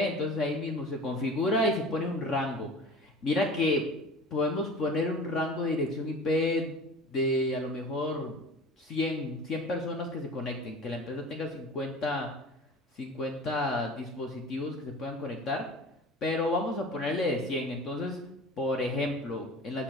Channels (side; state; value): both; normal; correlation 0.39